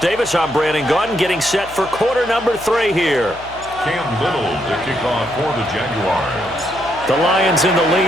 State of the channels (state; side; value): noise; left; hum, 20 dB below the sound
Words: I'm Brandon Gaudin, getting set for quarter number 3 here. Cam Little to kick off for the Jaguars. The Lions in the